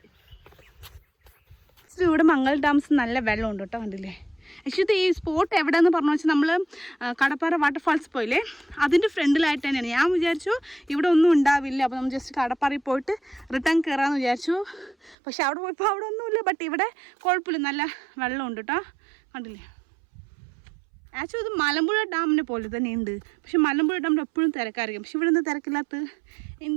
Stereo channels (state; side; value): drops out; left; at 15.2 s